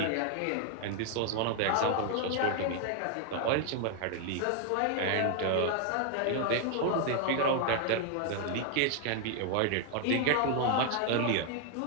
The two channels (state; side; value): different; both; correlation 0.00